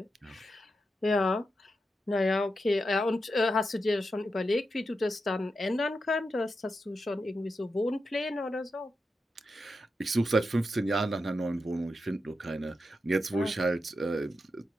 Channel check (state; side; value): normal; both; correlation 0.87